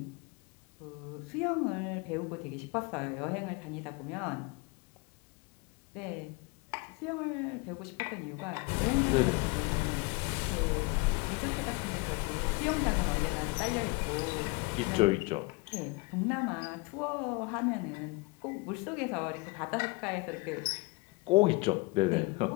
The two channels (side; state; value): right; quieter; 25.9 dB